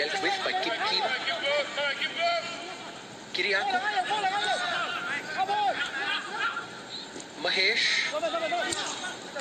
with by Kim Kima. Kiriaku. Mahesh.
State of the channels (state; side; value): identical; both; correlation 1.00